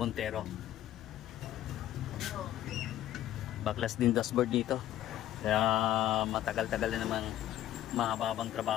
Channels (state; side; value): quieter; right; 12.9 dB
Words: Baklas din dashboard dito. Kaya matagal-tagal na naman, mahababang